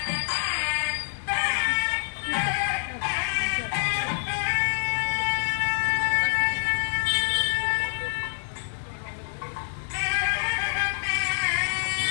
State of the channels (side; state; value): right; silent; digital silence